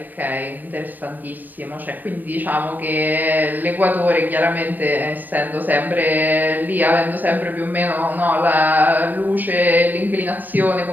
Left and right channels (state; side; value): late; left; 0.089 ms